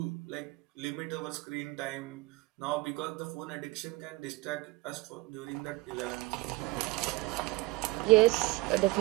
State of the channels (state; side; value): quieter; left; 21.7 dB